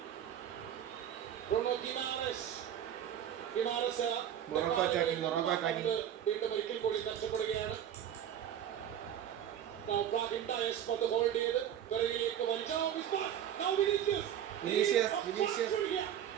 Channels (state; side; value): quieter; left; 10.1 dB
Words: Bruno Guimaraes. Morocco attacking. വീണ്ടും ഒരിക്കൽ കൂടി നഷ്ടപ്പെടുകയാണ്. Now Brahim Dias പന്ത് ഹോൾഡ് ചെയ്ത് പിറകിലേക്ക് വലിച്ചു. Now